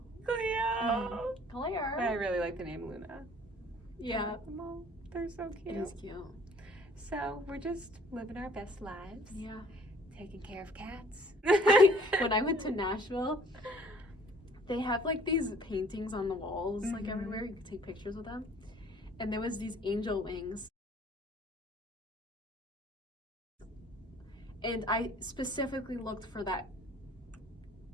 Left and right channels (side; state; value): both; normal; correlation 0.55